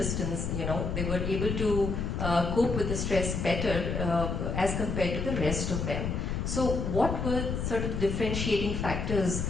They were able to cope with the stress better as compared to the rest of them. So what were sort of differentiating factors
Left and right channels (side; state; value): left; noise; rumble, 2 dB below the sound